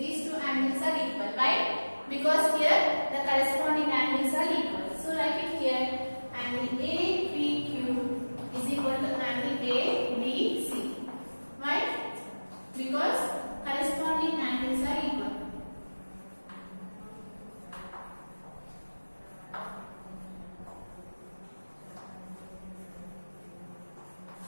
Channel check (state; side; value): inverted; both; correlation -1.00